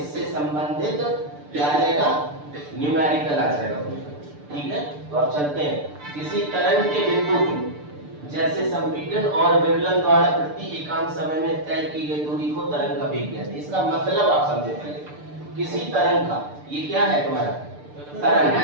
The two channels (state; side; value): late; left; 6.8 ms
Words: संबंधित क्या आ जाएगा, न्यूमेरिकल आ जाएगा। ठीक है, तो अब चलते हैं। किसी तरंग के बिंदु की जैसे संपीड़न और विवलन द्वारा प्रति एकांक समय में तय की गई दूरी को तरंग का वेग कहते हैं। इसका मतलब आप समझे पहले। किसी तरंग का, ये क्या है तुम्हारा